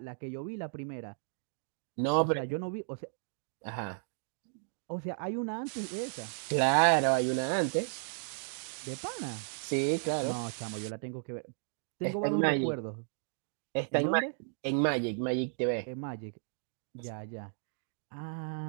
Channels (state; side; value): silent; left; digital silence